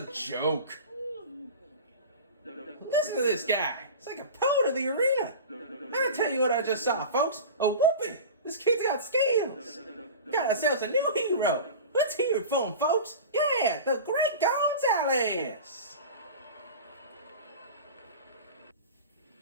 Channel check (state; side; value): inverted; both; correlation -0.33